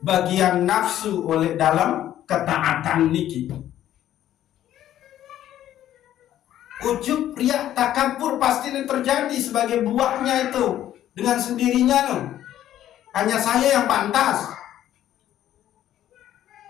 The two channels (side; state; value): right; quieter; 12.1 dB